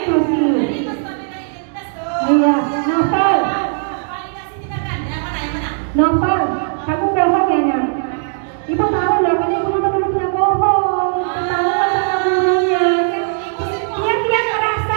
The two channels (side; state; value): left; silent; 68 dB below the other